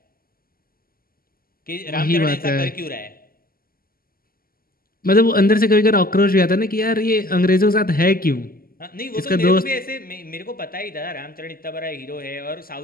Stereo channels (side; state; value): right; late; 0.42 ms